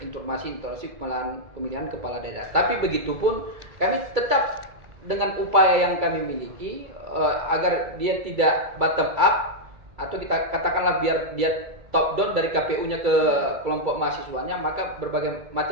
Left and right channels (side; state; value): left; late; 2.2 ms